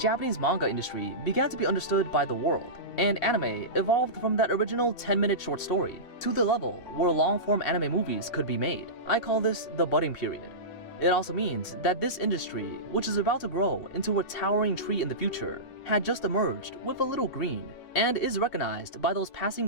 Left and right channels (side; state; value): right; late; 2.7 ms